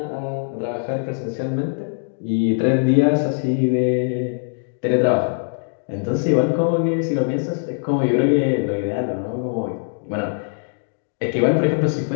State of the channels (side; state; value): right; silent; digital silence